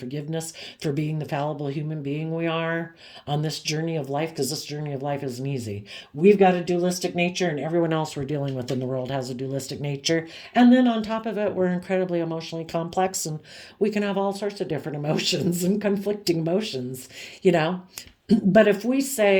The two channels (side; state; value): both; identical; correlation 1.00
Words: for being the fallible human being we are on this journey of life, because this journey of life isn't easy. We've got a dualistic nature, and everyone else we're dealing with in the world has a dualistic nature. And then on top of it, we're incredibly emotionally complex, and we can have all sorts of different emotions and conflicting emotions, But if we